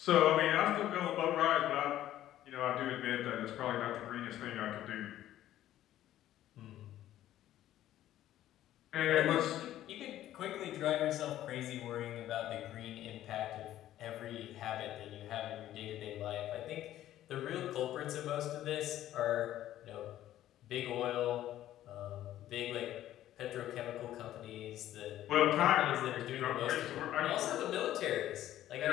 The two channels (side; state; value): right; quieter; 13.0 dB